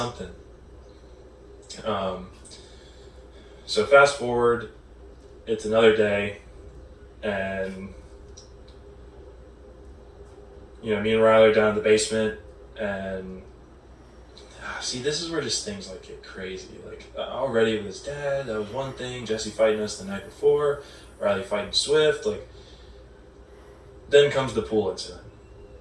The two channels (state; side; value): identical; both; correlation 1.00